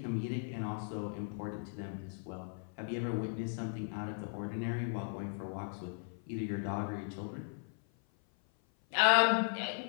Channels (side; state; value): right; silent; 53 dB below the other